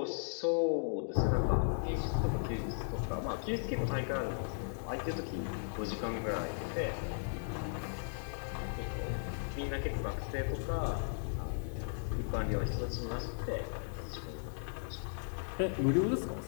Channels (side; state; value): right; silent; digital silence